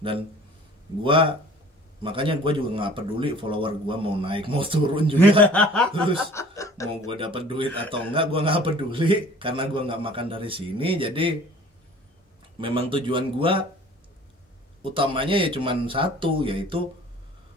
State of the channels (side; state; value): both; normal; correlation 0.48